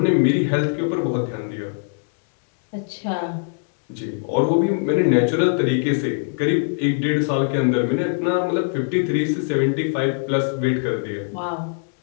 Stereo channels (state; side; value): silent; right; digital silence